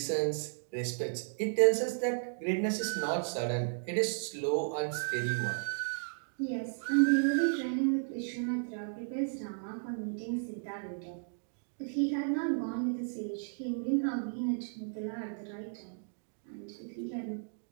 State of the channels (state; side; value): silent; left; digital silence